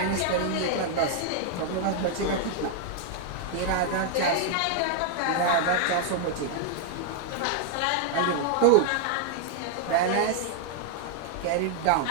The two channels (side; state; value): both; different; correlation 0.00